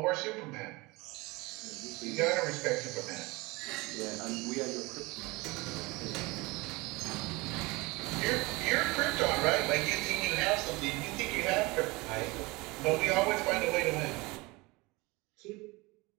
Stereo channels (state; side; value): quieter; left; 23.7 dB